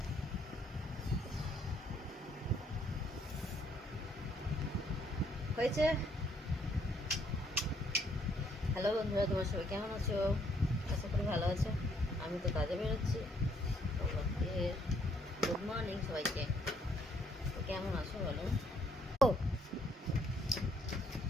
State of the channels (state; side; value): normal; both; correlation 0.68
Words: হয়েছে। হ্যালো বন্ধুরা, তোমার সবাই কেমন আছো? আশা করি ভালো আছো। আমি তো কাজে বেরোচ্ছি। তোমাকে গুড মর্নিং সবাইকে। তো কেমন আছো বলো? ও